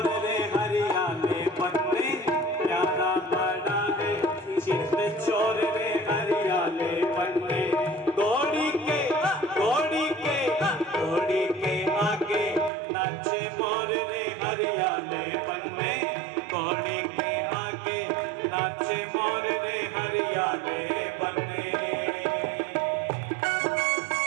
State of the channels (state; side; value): drops out; left; at 12.7 s